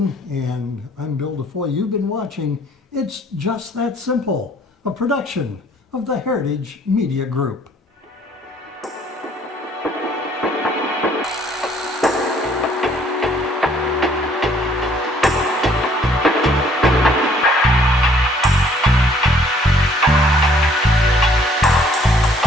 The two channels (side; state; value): both; normal; correlation 0.61